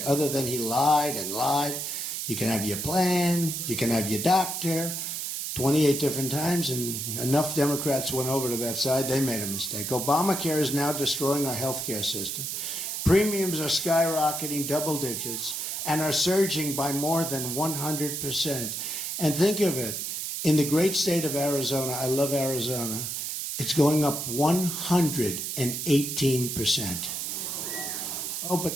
other than he lied and lied. You can have your plan, you can have your doctor, 28 different times, and enough Democrats went over to that side, they made a mistake. Obamacare is now destroying our health care system. Premiums are skyrocketing double digits and are surging by more than 100%. And think of it, in the great state of Arizona, I love Arizona, it's going up 118%. Oh, but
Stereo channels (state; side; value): noise; right; hiss, 3 dB below the sound